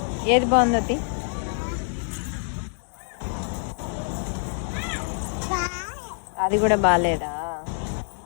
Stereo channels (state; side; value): silent; right; digital silence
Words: ఏది బాగుందో తి. అది కూడా బాగాలేదా?